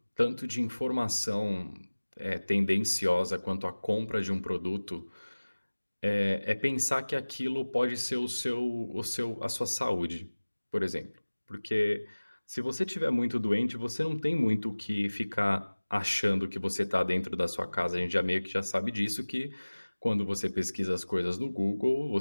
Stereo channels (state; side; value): inverted; both; correlation -1.00